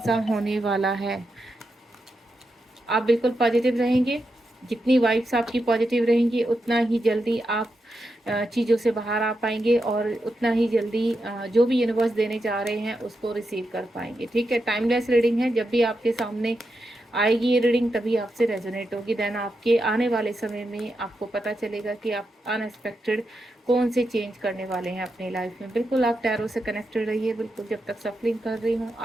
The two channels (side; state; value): both; normal; correlation 0.86